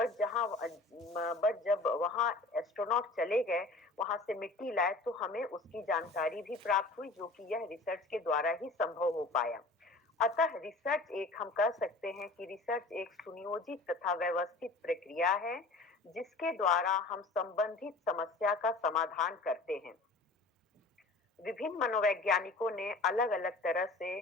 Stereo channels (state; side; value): quieter; right; 3.3 dB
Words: जब वहाँ एस्ट्रोनॉट चले गए, वहां से मिट्टी लाए, तो हमें उसकी जानकारी भी प्राप्त हुई, जो कि यह रिसर्च के द्वारा ही संभव हो पाया। अतः रिसर्च एक हम कह सकते हैं कि रिसर्च एक सुनियोजित तथा व्यवस्थित प्रक्रिया है जिसके द्वारा हम संबंधित समस्या का समाधान करते हैं। विभिन्न मनोवैज्ञानिकों ने अलग अलग तरह से